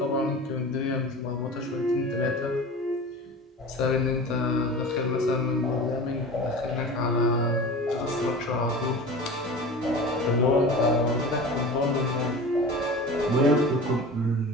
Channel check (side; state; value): both; normal; correlation 0.34